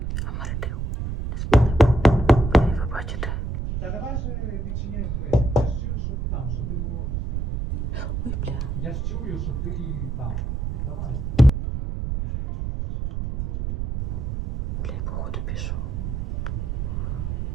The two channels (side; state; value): right; noise; rumble, 2 dB below the sound